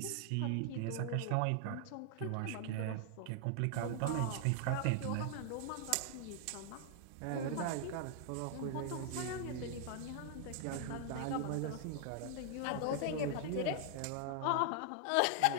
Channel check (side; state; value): both; different; correlation 0.00